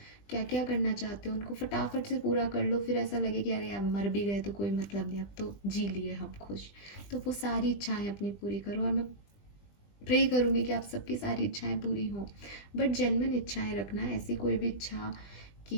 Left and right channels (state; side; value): late; right; 20 ms